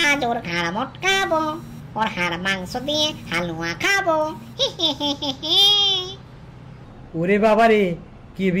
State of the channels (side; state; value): both; identical; correlation 1.00